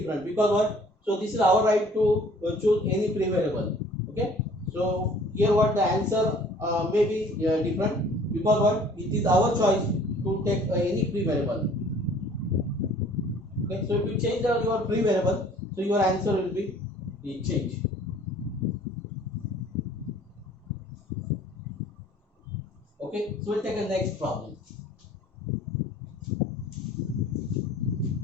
because what? So this is our right to choose any pre-variable. Okay. So here what the answer may be different because what? It is our choice to take any pre-variable. Okay. So if you change your pre-variable, so your answer will be changed. Okay. So we'll take a next problem.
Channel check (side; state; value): both; normal; correlation 0.53